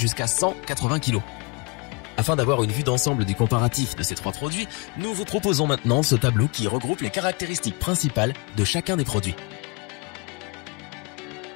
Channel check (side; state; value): right; quieter; 29.1 dB